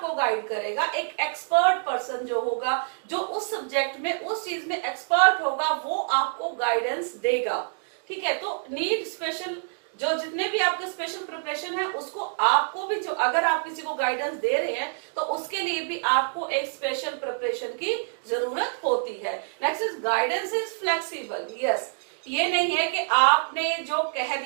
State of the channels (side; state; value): left; silent; digital silence